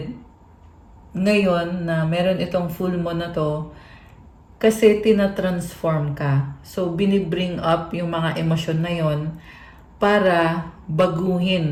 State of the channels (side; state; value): both; identical; correlation 1.00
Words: ngayon na meron itong full moon na to kasi tina-transform ka. So, binibring up yung mga emosyon na yon para